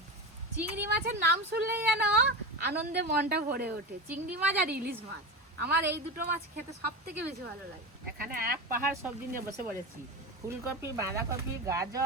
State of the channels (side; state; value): both; normal; correlation 0.23